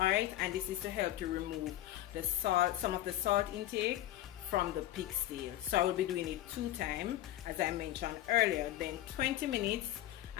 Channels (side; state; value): right; quieter; 14.0 dB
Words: and this is to help to remove the salt, some of the salt intake from the pigtail. So I will be doing it 2 times as I mentioned earlier, then 20 minutes,